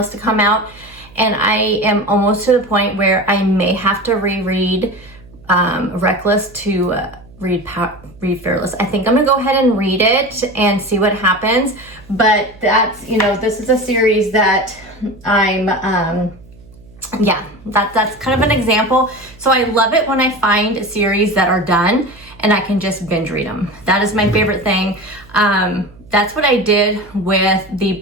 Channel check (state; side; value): noise; right; hum, 24 dB below the sound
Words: to come out, and I am almost to the point where I may have to reread Reckless to read Fearless. I think I'm gonna go ahead and read it and see what happens. But that's, this is a series that I'm, that's kind of an example. So I love it when I find series that are done and I can just binge read them. That is my favorite thing. That's what I did with the